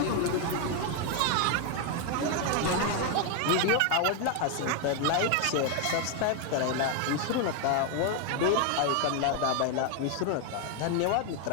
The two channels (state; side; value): different; both; correlation 0.01